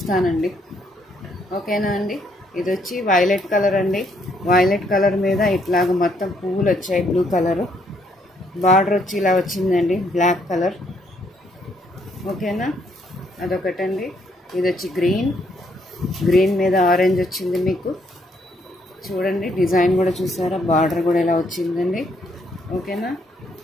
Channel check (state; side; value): normal; both; correlation 0.71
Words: ఓకేనా అండి? ఇది వచ్చి వైలెట్ కలర్ అండి. వైలెట్ కలర్ మీద ఇట్లాగ మొత్తం పువ్వులు వచ్చాయి. బ్లూ కలరు బార్డర్ వచ్చి ఇలా వచ్చిందండి, బ్లాక్ కలర్. ఓకేనా? అదొకటండి. ఇది వచ్చి గ్రీన్ మీద ఆరెంజ్ వచ్చింది. మీకు చూడండి, డిజైన్ కూడా చూసారా? బార్డర్ కూడా ఇలా వచ్చిందండి. ఓకేనా?